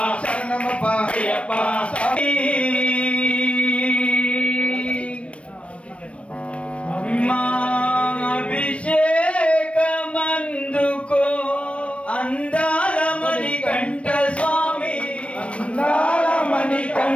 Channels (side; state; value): right; late; 0.062 ms